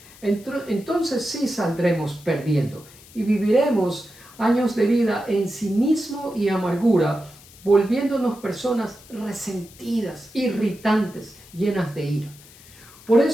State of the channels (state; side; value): noise; left; hiss, 22 dB below the sound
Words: entonces sí saldremos perdiendo y viviremos años de vida en cinismo y amargura, volviéndonos personas resentidas, irritantes, llenas de ira. Por